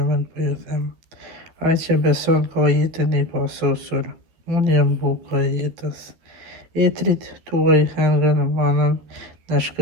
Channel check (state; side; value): late; left; 12 ms